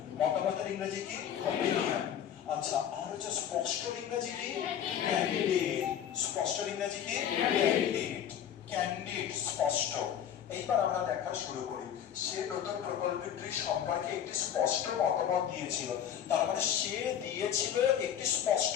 মতামতের ইংরেজি কি? অপিনিয়ন। আচ্ছা, আর হচ্ছে স্পষ্ট ইংরেজি কি? ক্যান্ডিড। স্পষ্ট ইংরেজি কি? ক্যান্ডিড। ক্যান্ডিড, স্পষ্ট। এইবার আমরা দেখা শুরু করি। সে নতুন প্রকল্পটি সম্পর্কে একটি স্পষ্ট মতামত দিয়েছিল। তার মানে সে দিয়েছিল একটি স্পষ্ট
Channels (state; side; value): quieter; right; 9.5 dB